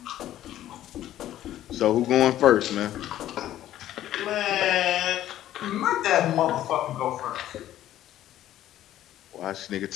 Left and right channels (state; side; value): quieter; right; 12.9 dB